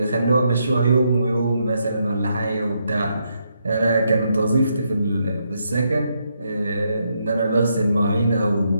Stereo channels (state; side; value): inverted; both; correlation -0.79